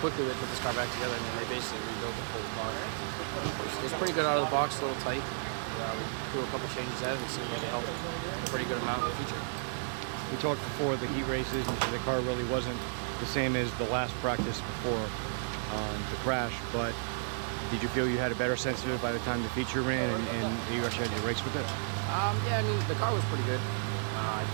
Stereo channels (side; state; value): left; silent; 56 dB below the other